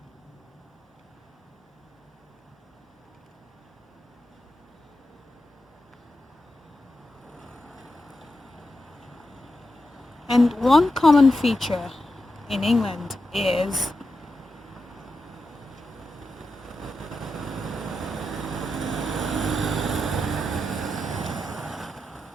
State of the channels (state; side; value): normal; both; correlation 0.88